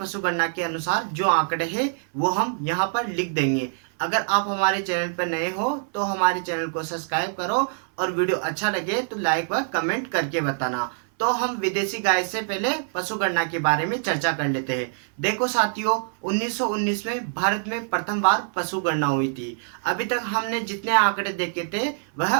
गणना के अनुसार जो आंकड़े हैं वो हम यहाँ पर लिख देंगे। अगर आप हमारे चैनल पर नए हो तो हमारे चैनल को सब्सक्राइब करो, और वीडियो अच्छा लगे तो लाइक व कमेंट करके बताना। तो हम विदेशी गाय से पहले पशु गणना के बारे में चर्चा कर लेते हैं। देखो साथियों, 1919 में भारत में प्रथम बार पशु गणना हुई थी। अभी तक हमने जितने आंकड़े देखे थे वह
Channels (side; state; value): left; silent; 59 dB below the other